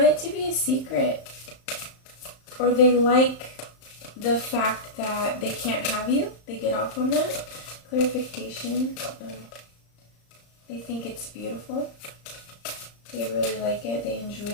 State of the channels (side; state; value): right; late; 35 ms